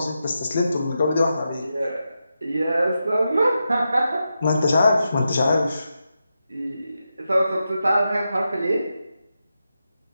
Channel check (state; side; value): inverted; both; correlation -0.88